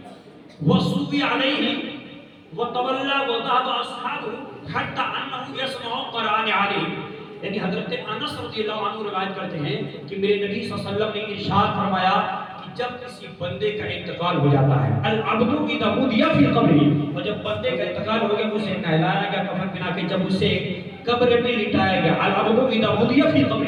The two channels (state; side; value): identical; both; correlation 1.00